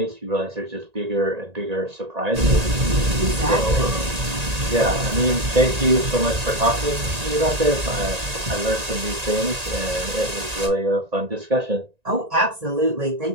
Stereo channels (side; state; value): left; late; 1.9 ms